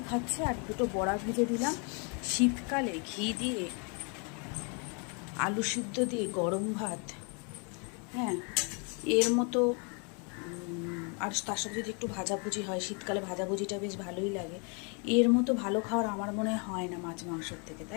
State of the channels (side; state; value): right; quieter; 36.2 dB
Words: খাচ্ছে, আর দুটো বড়া ভেজে দিলাম। শীতকালে ঘি দিয়ে আলু সিদ্ধ দিয়ে গরম ভাত, হ্যাঁ, এর মতো। আর তার সাথে যদি একটু ভাজাভুজি হয়, শীতকালে ভাজাভুজিটা বেশ ভালোই লাগে। এর মতো ভালো খাওয়ার আমার মনে হয় না মাছ মাংসর থেকে,